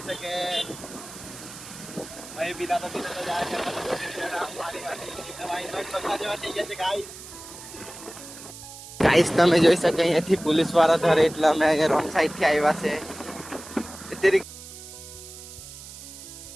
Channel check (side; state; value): right; noise; hiss, 14 dB below the sound